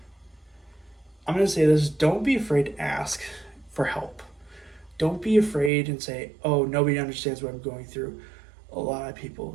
I'm going to say this, don't be afraid to ask for help. Don't be afraid and say, oh, nobody understands what I'm going through. A lot of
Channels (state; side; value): drops out; left; at 5.7 s